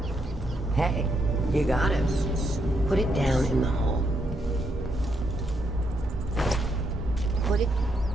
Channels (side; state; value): both; normal; correlation 0.78